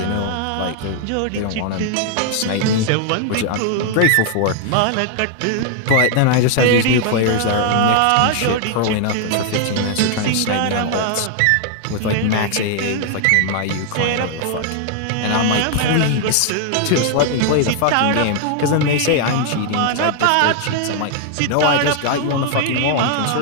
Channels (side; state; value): both; different; correlation 0.00